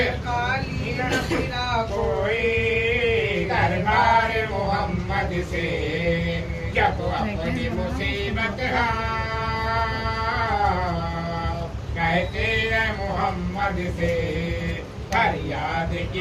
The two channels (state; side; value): identical; both; correlation 1.00